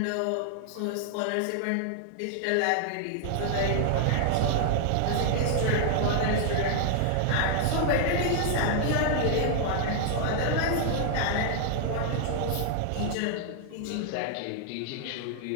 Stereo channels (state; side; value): different; both; correlation 0.00